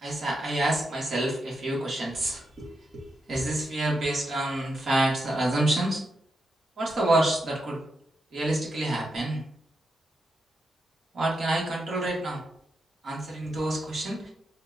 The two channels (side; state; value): both; normal; correlation 0.85